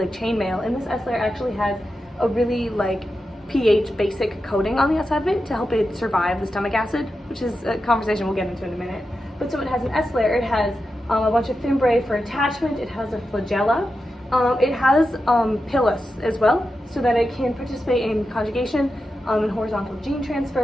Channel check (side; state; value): both; normal; correlation 0.90